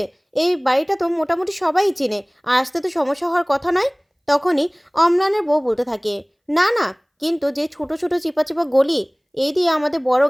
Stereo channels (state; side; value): identical; both; correlation 1.00